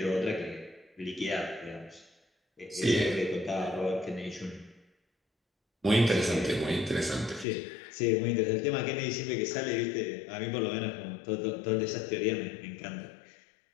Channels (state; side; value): drops out; right; at 7.5 s